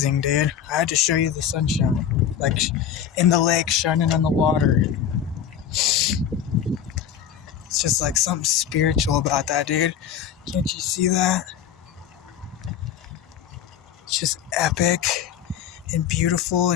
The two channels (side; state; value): right; quieter; 9.0 dB